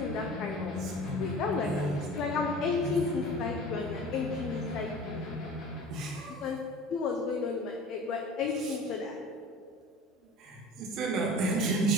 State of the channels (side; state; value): both; normal; correlation 0.40